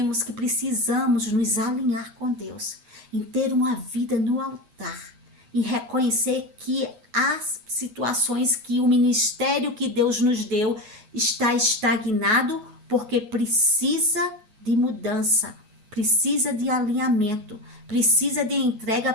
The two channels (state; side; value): late; left; 8.3 ms